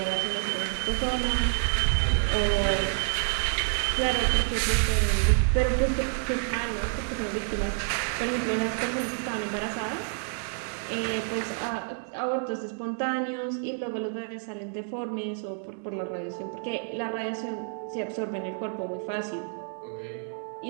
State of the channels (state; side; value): silent; left; 59 dB below the other